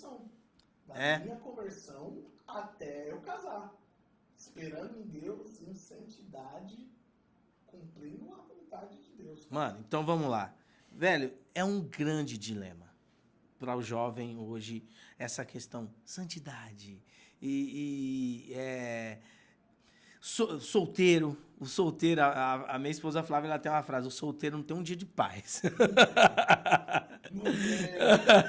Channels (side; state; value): both; identical; correlation 1.00